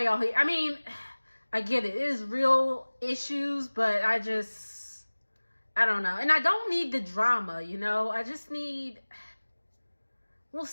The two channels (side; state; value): both; inverted; correlation -1.00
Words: y'all here? I mean, I get it. It is real issues, but I don't know. And I don't need the drama, you know? I just need, well,